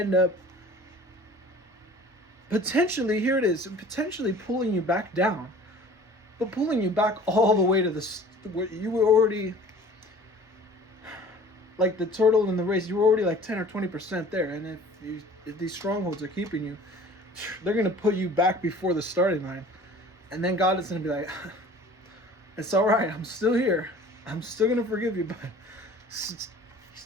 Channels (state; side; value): normal; both; correlation 0.47